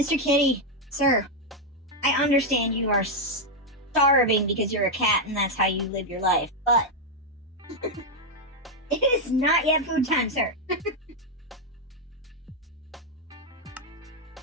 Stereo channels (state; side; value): normal; both; correlation 0.01